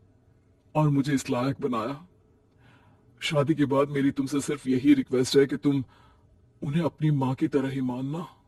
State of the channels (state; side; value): identical; both; correlation 1.00